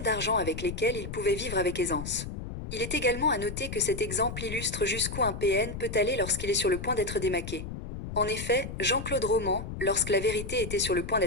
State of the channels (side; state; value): left; noise; rumble, 8 dB below the sound